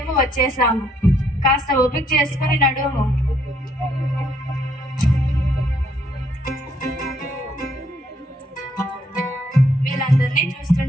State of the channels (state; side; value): normal; both; correlation 0.69